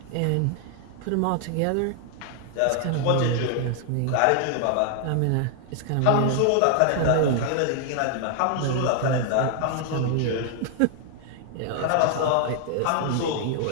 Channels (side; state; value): both; different; correlation 0.00